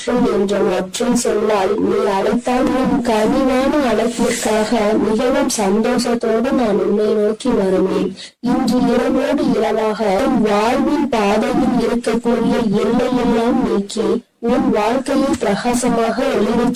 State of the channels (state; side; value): identical; both; correlation 1.00